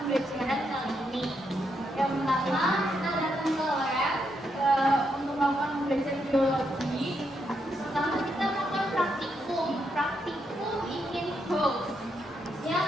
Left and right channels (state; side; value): normal; both; correlation 0.79